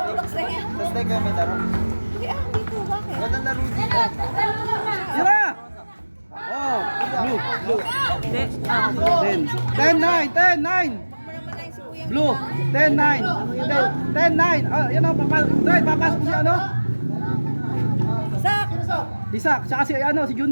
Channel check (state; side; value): inverted; both; correlation -1.00